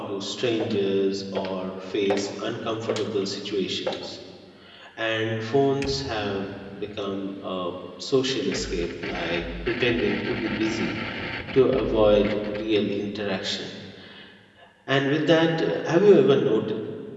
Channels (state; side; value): identical; both; correlation 1.00